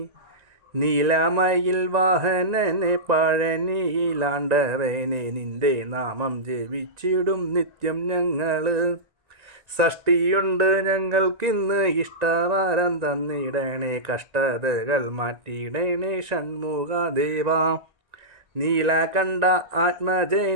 നീലമയിൽ വാഹനനെ പഴനിയിലാണ്ടവനെ നിന്റെ നാമം ജപിച്ചിടും നിത്യം ഞങ്ങൾ. ഷഷ്ടിയുണ്ട് ഞങ്ങൾക്കിന്ന് ഇഷ്ടവരം തന്നിടണേ, കഷ്ടതകൾ മാറ്റിയിടണേ ഷൺമുഖദേവാ. നീലകണ്ഠ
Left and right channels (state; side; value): late; left; 1.9 ms